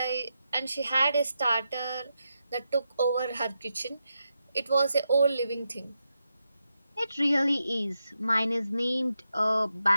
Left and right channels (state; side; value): inverted; both; correlation -0.86